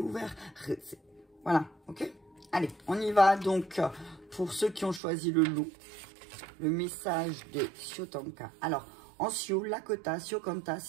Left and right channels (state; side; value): drops out; left; at 5.0 s